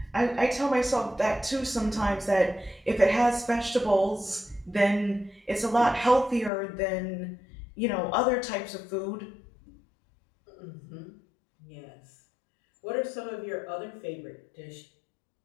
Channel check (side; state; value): right; drops out; at 6.5 s